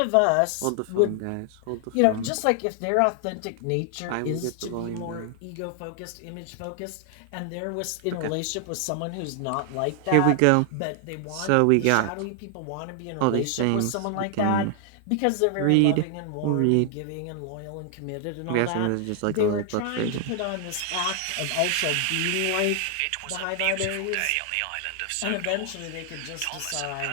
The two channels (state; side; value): different; both; correlation 0.00